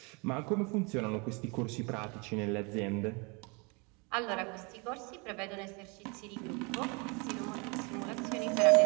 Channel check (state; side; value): quieter; left; 30.5 dB